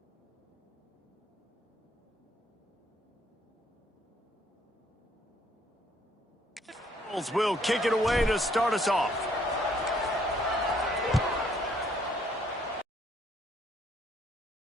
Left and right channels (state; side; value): normal; both; correlation 0.66